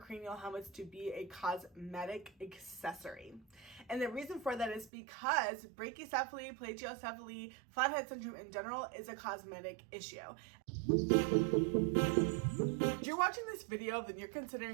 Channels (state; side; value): drops out; left; at 4.9 s